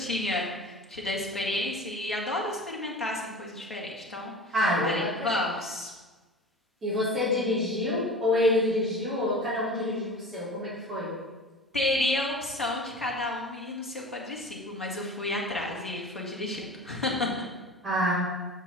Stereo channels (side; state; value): both; normal; correlation 0.36